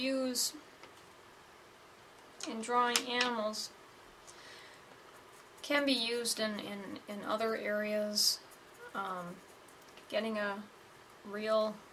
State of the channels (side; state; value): both; identical; correlation 1.00